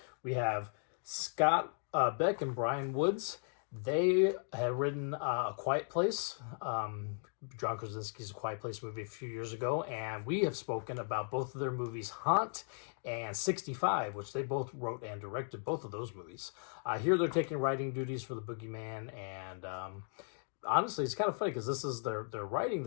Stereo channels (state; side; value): silent; right; 53 dB below the other